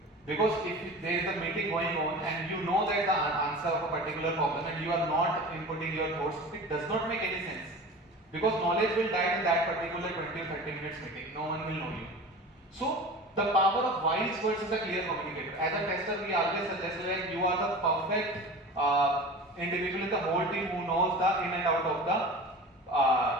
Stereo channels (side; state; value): both; normal; correlation 0.36